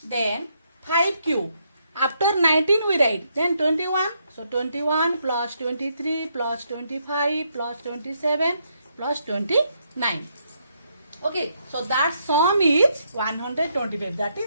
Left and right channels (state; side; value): inverted; both; correlation -0.76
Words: Then 5 cube. After 19 we write, then 21. So 21 plus 23 plus 25 plus 27 plus 29. Okay, so that sum is 125. That